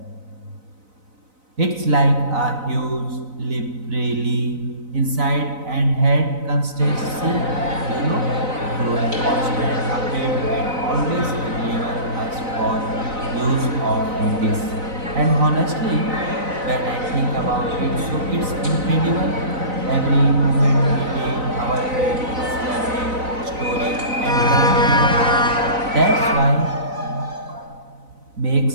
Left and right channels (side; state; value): left; late; 4.0 ms